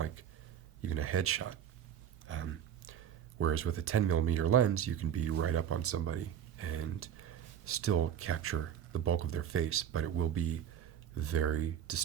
even a headshot. Whereas with a 10 millimeter lens, you can be right up on somebody and still capture the bulk of their face, but it will be very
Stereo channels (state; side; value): quieter; left; 9.3 dB